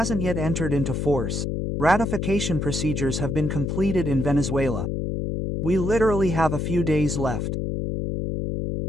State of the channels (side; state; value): left; noise; hum, 1 dB below the sound